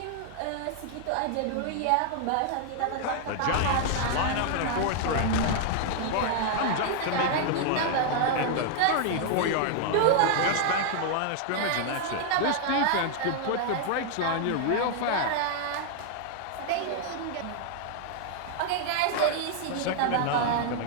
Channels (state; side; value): different; both; correlation 0.00